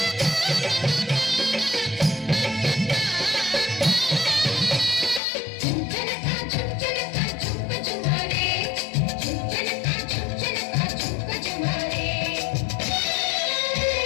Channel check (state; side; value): drops out; right; at 5.2 s